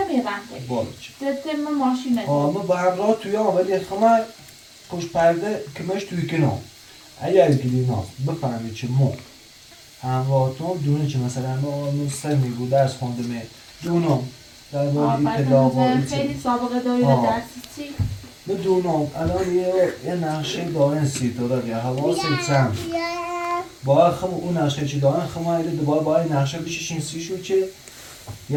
رن تی بالا تتم ماشین نداره اما با همراه توی ولی خمه پشت پرده کمش توی کنار اگر گلیناز بفهمه چه مو همراهتون دونه چه مثلا ما سر میگو درس خونده می دونم در باره اطلاع و خیلی سابقه داری آه. درس چی؟ بدونم الان یه نقشه دارن سیتورا یا حواست هم باید خم اون نقشه چی دارن خم ایده دوباره باید نقشه بششین سیشو چه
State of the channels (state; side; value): identical; both; correlation 1.00